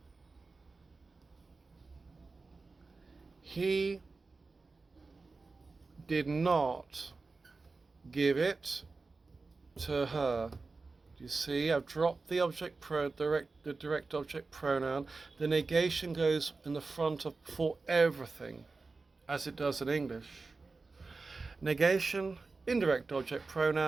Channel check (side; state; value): left; quieter; 3.9 dB